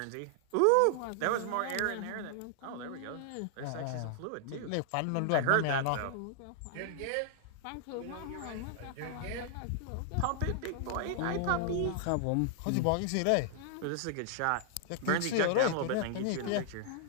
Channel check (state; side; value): different; both; correlation -0.01